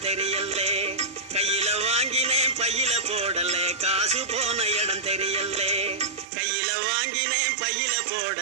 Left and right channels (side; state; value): left; drops out; at 6.2 s